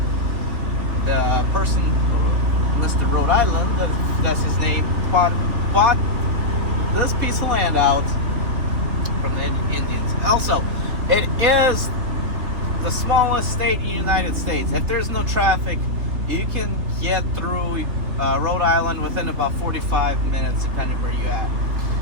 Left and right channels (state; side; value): late; left; 3.6 ms